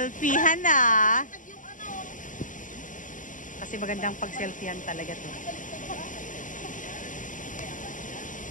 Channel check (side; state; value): right; late; 0.38 ms